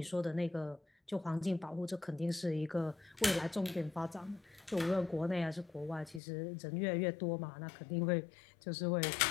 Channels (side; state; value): right; drops out; at 6.2 s